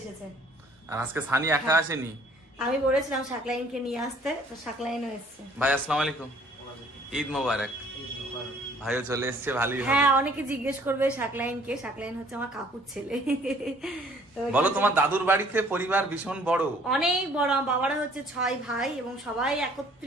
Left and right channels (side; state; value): both; normal; correlation 0.57